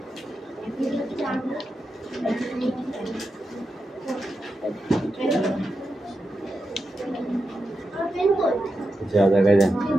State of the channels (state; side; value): normal; both; correlation 0.88